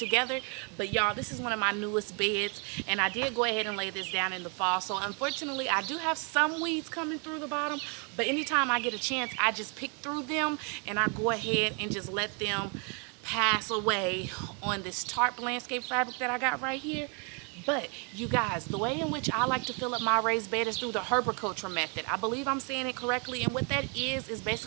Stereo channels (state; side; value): quieter; left; 36.5 dB